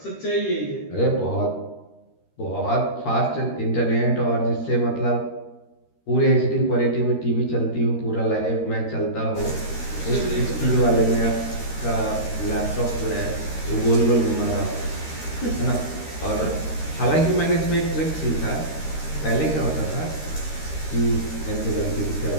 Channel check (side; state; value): right; late; 13 ms